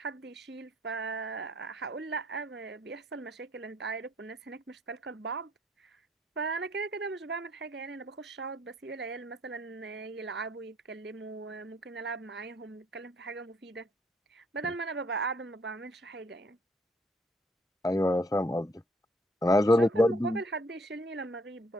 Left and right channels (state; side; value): normal; both; correlation 0.66